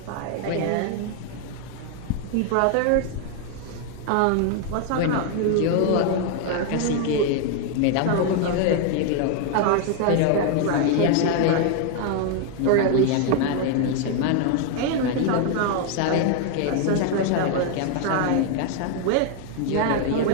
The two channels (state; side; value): different; both; correlation 0.00